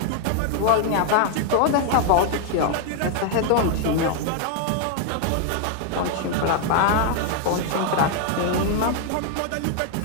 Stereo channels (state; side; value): different; both; correlation 0.00